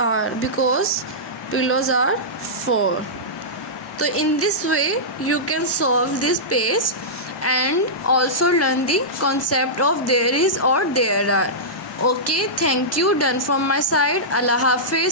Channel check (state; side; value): normal; both; correlation -0.14